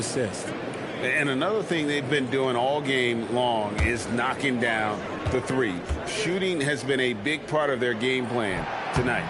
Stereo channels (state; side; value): identical; both; correlation 1.00